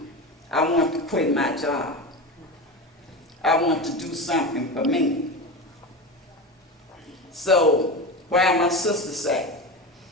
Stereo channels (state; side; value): normal; both; correlation 0.24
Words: I want to quit my job. I want to do something for me. So, while my sister said,